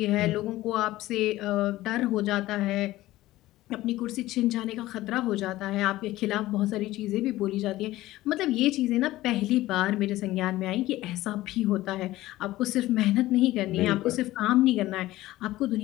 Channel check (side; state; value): right; quieter; 16.6 dB